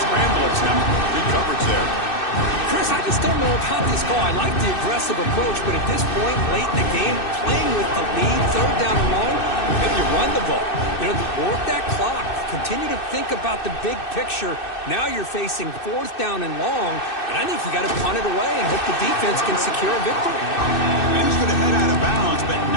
attempt. Good coverage there. Chris, I just don't know about this call. I like the aggressive approach, but at this point, late in the game, playing with the lead, third down and long, maybe you run the ball. You know, work that clock. Continue to think about the big picture. Now you're facing 4th down and long, and I think you got to punt it away and hope the defense can secure a victory. And he's going to head out of bounds, but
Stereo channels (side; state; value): right; late; 2.6 ms